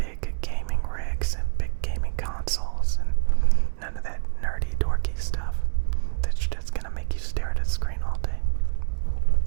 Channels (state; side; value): silent; left; 59 dB below the other